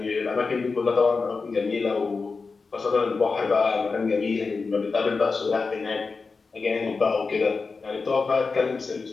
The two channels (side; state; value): right; quieter; 4.4 dB